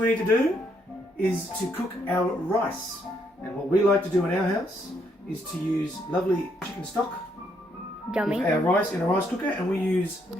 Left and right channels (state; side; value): normal; both; correlation 0.73